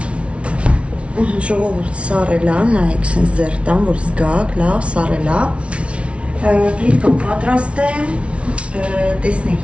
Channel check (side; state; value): left; late; 0.061 ms